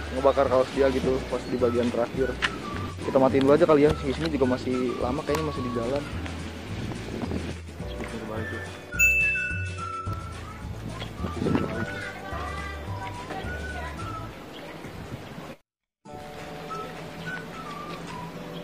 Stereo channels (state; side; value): identical; both; correlation 1.00